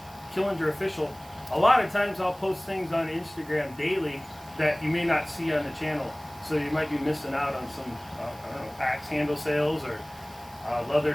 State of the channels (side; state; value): right; noise; hiss, 23 dB below the sound